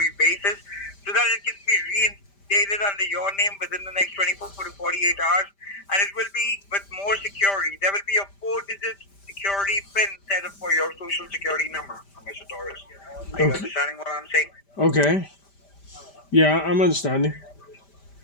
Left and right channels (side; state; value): right; late; 5.1 ms